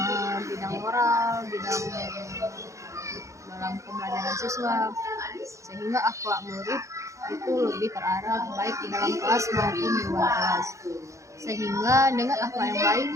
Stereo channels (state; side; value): late; left; 0.15 ms